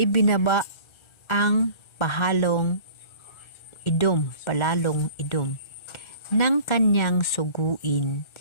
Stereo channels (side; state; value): right; late; 1.3 ms